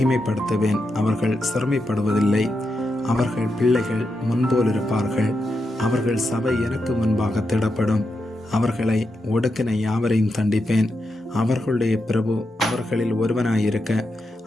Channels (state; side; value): normal; both; correlation 0.86